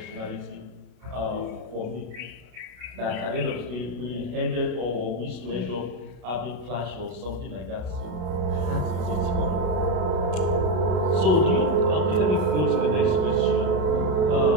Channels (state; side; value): late; left; 33 ms